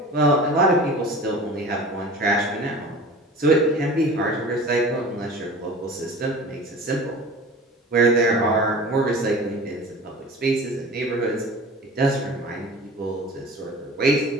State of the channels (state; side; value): normal; both; correlation 0.39